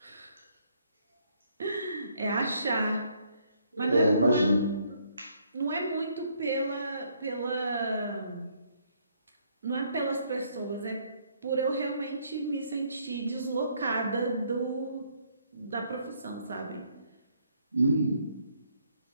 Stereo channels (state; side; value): inverted; both; correlation -0.69